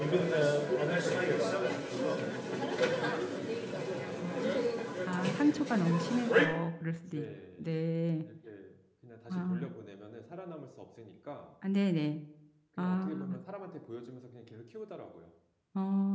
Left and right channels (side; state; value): both; identical; correlation 1.00